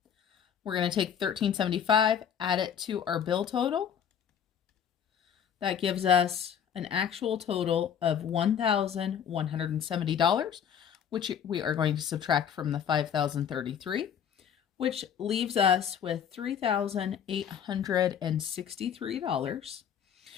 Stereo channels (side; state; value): right; quieter; 8.4 dB